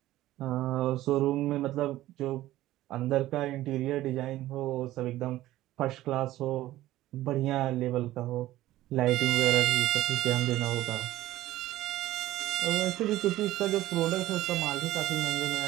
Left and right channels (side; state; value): left; quieter; 15.4 dB